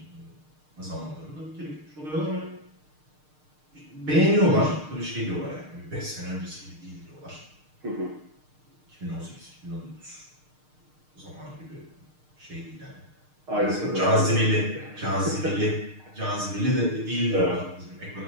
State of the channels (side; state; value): left; late; 6.6 ms